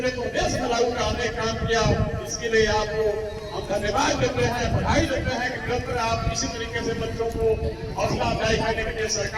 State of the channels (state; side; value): identical; both; correlation 1.00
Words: प्रदेश में लागू कराने का काम किया। इसके लिए आपको हम धन्यवाद देते हैं, बधाई देते हैं कि निरंतर आप इसी तरीके से बच्चों को हौसला अफजाई करने के लिए